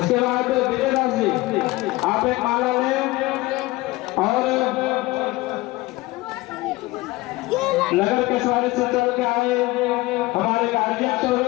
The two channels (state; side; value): quieter; right; 20.1 dB